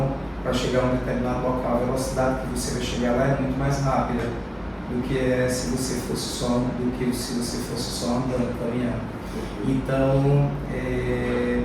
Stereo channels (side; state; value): both; identical; correlation 1.00